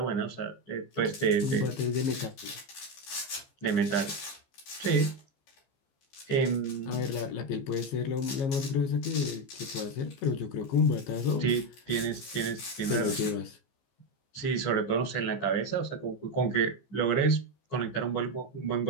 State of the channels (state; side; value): late; right; 15 ms